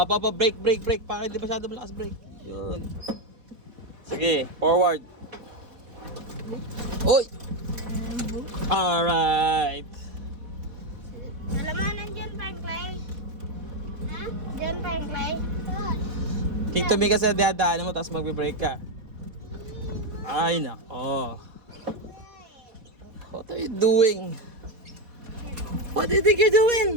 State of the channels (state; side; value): late; left; 4.2 ms